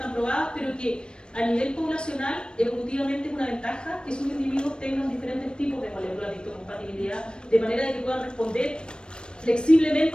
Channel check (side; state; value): right; late; 0.053 ms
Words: probadas, pero que a nivel poblacional, evolutivamente es una ventaja que sus individuos tengan diferentes tipos de moléculas de histocompatibilidad, de manera de que puedan responder